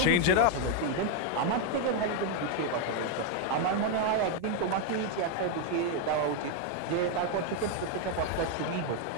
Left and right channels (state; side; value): different; both; correlation 0.01